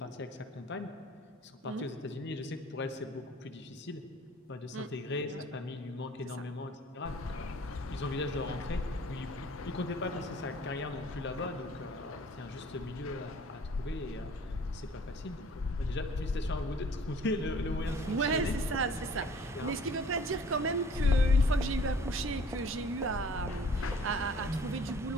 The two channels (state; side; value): normal; both; correlation 0.53